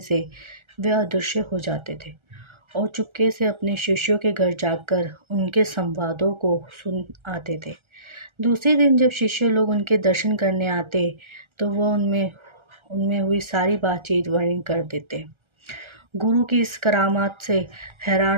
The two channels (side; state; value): left; late; 1.3 ms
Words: वे अदृश्य हो जाते थे और चुपके से अपने शिष्यों के घर जाकर उनके संवादों को सुन आते थे। दूसरे दिन जब शिष्य लोग उनके दर्शन करने आते तो वह उनमें हुई सारी बातचीत वर्णन कर देते। गुरु की इस करामात से